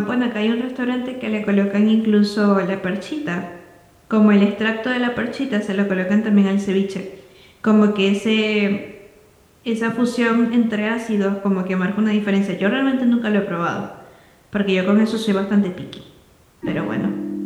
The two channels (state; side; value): identical; both; correlation 1.00